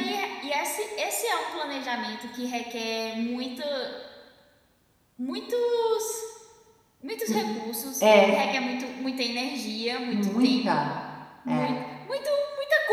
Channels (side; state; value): both; identical; correlation 1.00